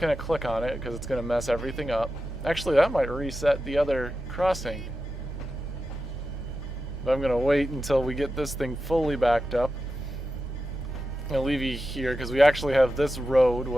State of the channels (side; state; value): both; normal; correlation 0.91